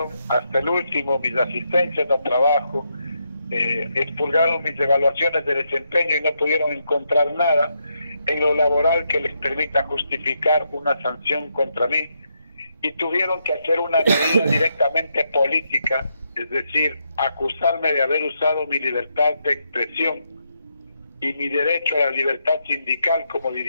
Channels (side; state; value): both; inverted; correlation -0.80